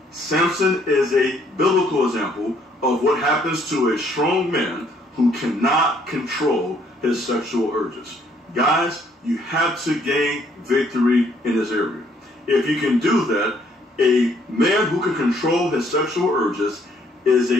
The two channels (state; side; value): normal; both; correlation 0.66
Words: Samson is a biblical example of what happens to a strong man who cannot control his sexual urges. Guys, you have to gain victory in this area. If you can do that, a man who can control his sexual urges is